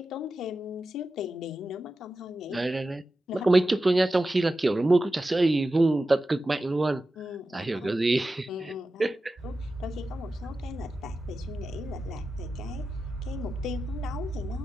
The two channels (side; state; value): both; normal; correlation 0.93